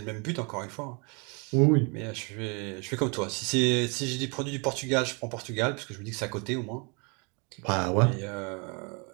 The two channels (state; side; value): quieter; left; 33.1 dB